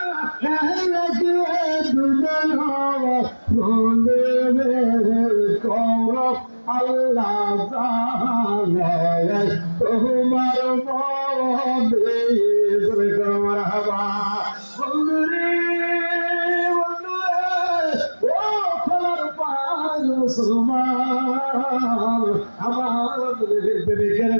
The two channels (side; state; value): both; inverted; correlation -1.00